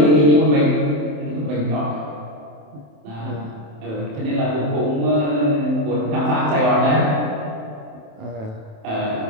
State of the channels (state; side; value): late; left; 27 ms